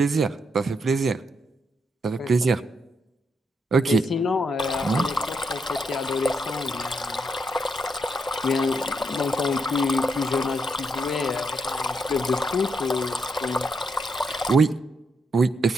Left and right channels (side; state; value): both; normal; correlation 0.79